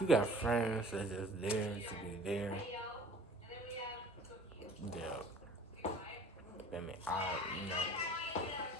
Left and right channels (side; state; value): both; normal; correlation 0.48